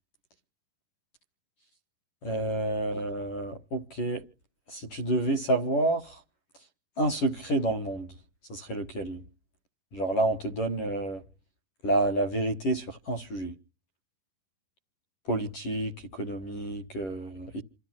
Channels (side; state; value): right; late; 11 ms